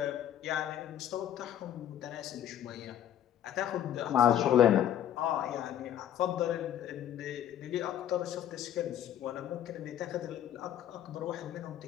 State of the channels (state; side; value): quieter; right; 10.9 dB